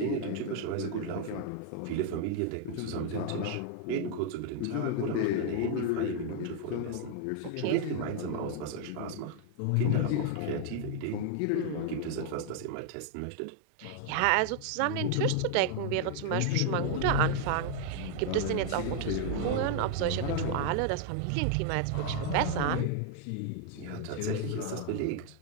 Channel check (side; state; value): both; different; correlation 0.00